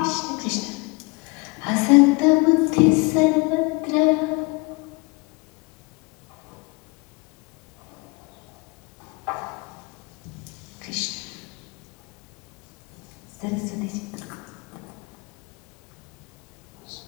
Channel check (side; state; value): right; quieter; 27.6 dB